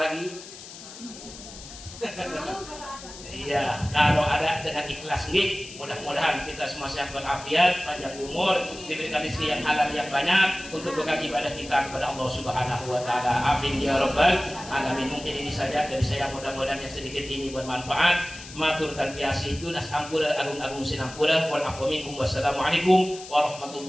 Iya, kalau ada dengan ikhlas nih, mudah-mudahan kita semua sehat walafiat, panjang umur, diberikan rezeki yang halal yang banyak untuk bekal ibadah kita kepada Allah Subhanahu wa taala. Amin ya rabbal alamin. Mungkin ini saja dari saya, mudah-mudahan yang sedikit ini bermanfaat. Matur dan biasa itu nas ampura agung-agung sinampura wal afu minkum wassalamualaikum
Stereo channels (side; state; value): left; noise; hiss, 15 dB below the sound